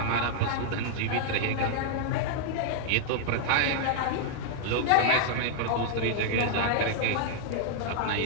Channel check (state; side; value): different; both; correlation -0.01